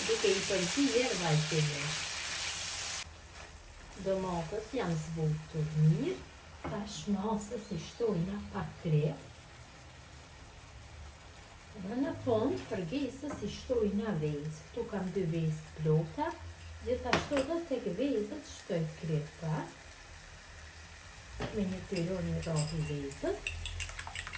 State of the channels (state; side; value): identical; both; correlation 1.00